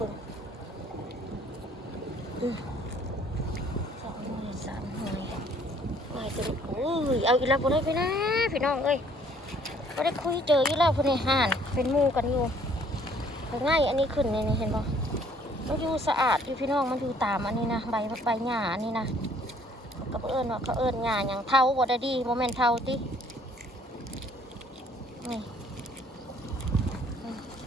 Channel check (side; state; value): both; normal; correlation 0.60